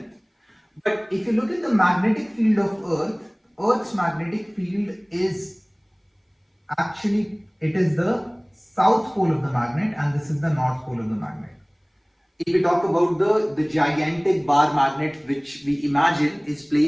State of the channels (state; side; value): identical; both; correlation 1.00